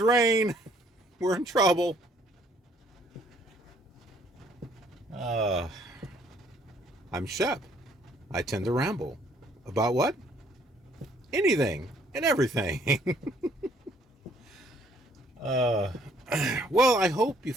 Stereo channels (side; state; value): both; normal; correlation 0.63